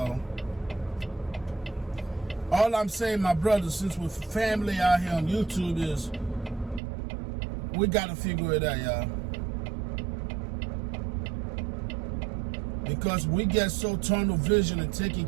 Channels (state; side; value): drops out; left; at 6.8 s